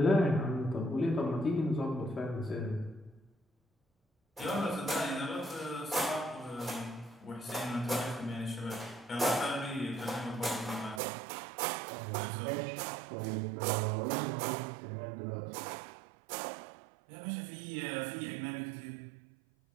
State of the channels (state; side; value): drops out; left; at 11.0 s